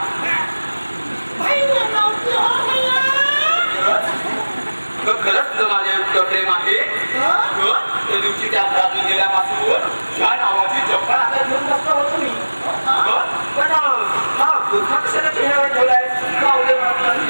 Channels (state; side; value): inverted; both; correlation -1.00